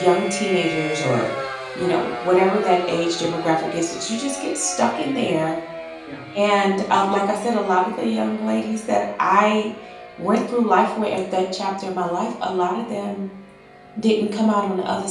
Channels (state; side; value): identical; both; correlation 1.00